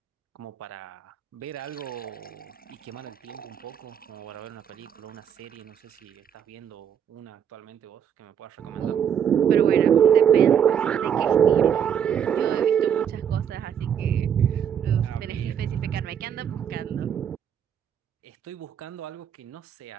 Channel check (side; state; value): left; quieter; 8.5 dB